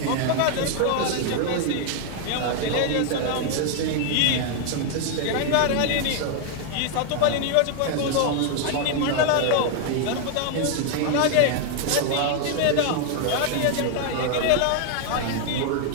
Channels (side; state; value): both; different; correlation 0.00